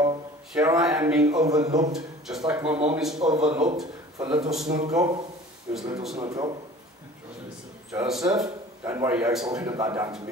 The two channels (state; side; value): normal; both; correlation 0.45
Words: Here I am being overlooked, just like my mom is overlooked for little Snoetkop. Who's little Snoetkop? Joseph. Don't worry, Joke's all going to bow down to